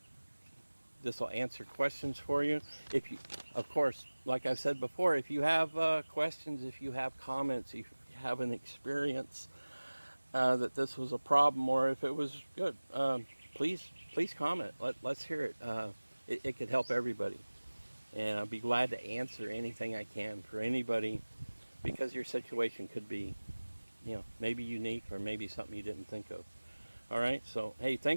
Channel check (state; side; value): inverted; both; correlation -1.00